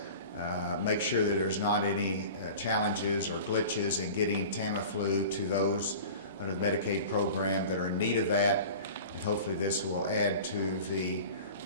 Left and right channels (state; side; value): inverted; both; correlation -0.38